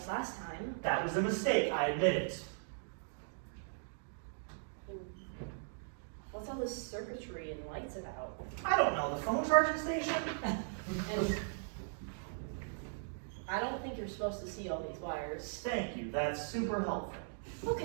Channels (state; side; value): silent; left; digital silence